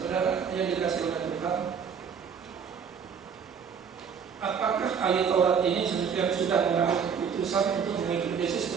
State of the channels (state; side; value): quieter; left; 6.9 dB